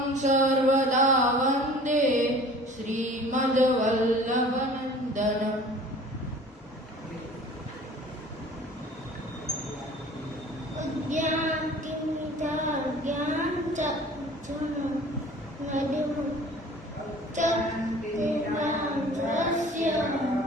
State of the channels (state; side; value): normal; both; correlation 0.46